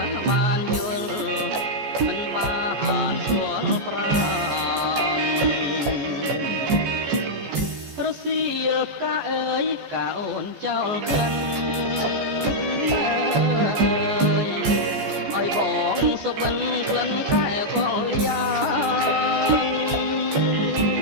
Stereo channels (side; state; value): left; late; 14 ms